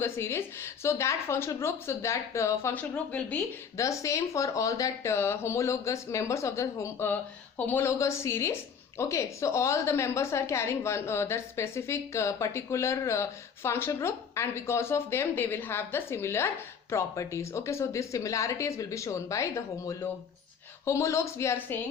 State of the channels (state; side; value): quieter; right; 6.8 dB